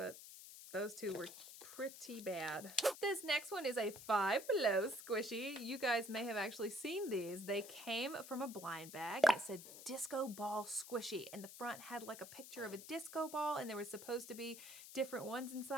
those two were pretty bad. This next one is a Five Below squishy. You guys may have actually seen these. They came from a blind bag. It said disco ball squishy, and the front had like a picture of a disco ball, and there was supposed to be different ones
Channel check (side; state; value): left; noise; hiss, 13 dB below the sound